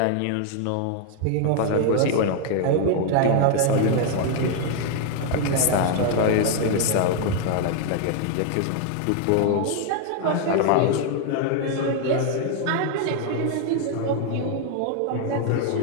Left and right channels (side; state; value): both; different; correlation 0.00